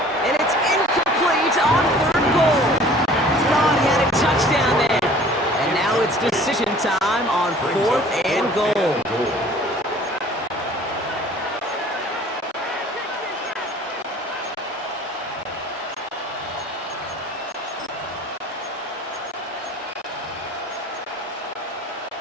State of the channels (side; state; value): both; normal; correlation 0.50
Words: And it's incomplete on third goal. Thought he had a touchdown there. And now it's decision time on 4th and goal.